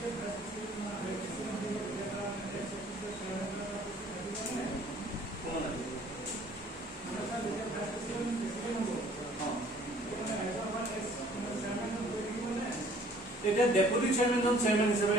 এটা deputy chairman জন chairman হিসেবে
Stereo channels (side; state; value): both; normal; correlation 0.55